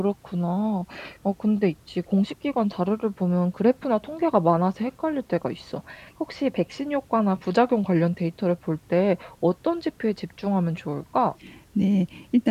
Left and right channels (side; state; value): both; identical; correlation 1.00